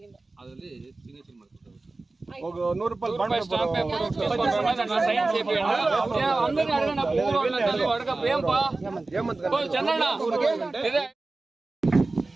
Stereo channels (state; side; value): quieter; left; 3.3 dB